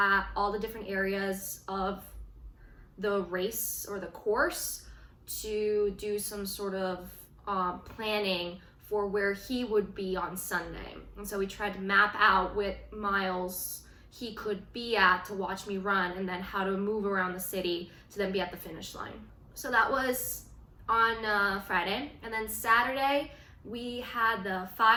all the different areas of the race or the course to do some sort of planning for where he would be on Sunday. And so we tried to map out what miles he could be at to watch me run, and then how to move around the city to then be at the finish line. So that was on Friday, and then Saturday we had the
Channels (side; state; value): both; identical; correlation 1.00